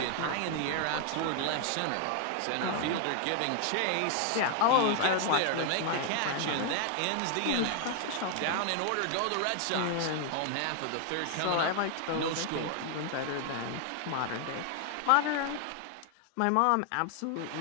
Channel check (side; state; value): both; different; correlation 0.00